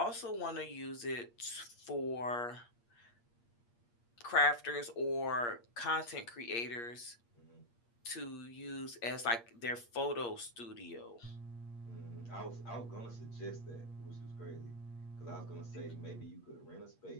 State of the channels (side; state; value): right; late; 8.5 ms